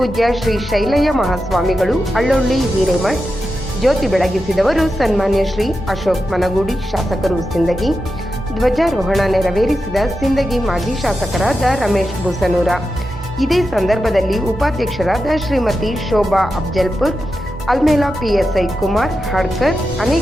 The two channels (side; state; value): both; normal; correlation 0.89